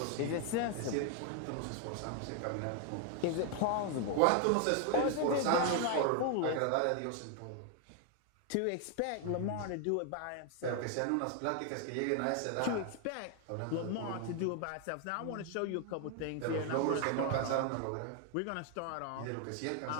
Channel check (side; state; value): both; different; correlation 0.00